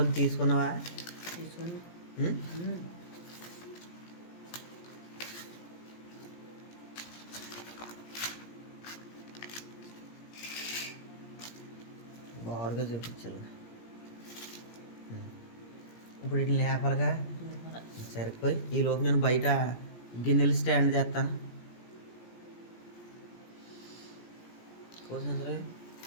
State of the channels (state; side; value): late; right; 17 ms